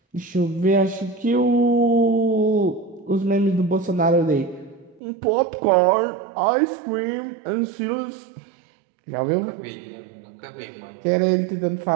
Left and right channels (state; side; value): drops out; left; at 5.0 s